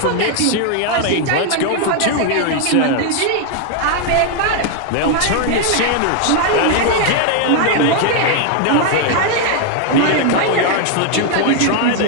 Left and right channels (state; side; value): different; both; correlation 0.00